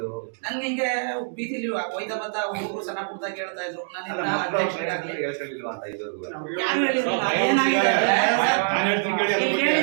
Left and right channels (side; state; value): left; silent; digital silence